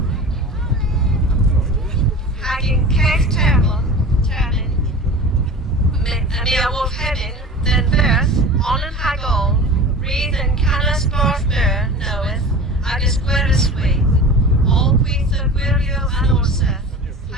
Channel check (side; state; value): both; normal; correlation 0.36